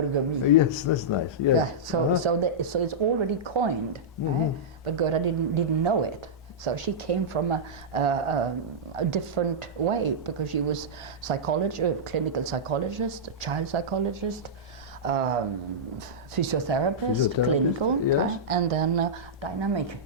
Yes, that's nice. Yes. Yeah. So it's already coined, right? But Gerda didn't know it. So she came from a different way, because she was clinical psychologist, child psychologist, physiotherapist, clinical, yes. And then dynamic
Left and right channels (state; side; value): normal; both; correlation -0.12